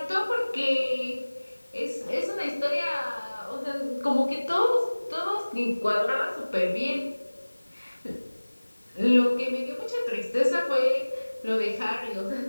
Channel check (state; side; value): inverted; both; correlation -1.00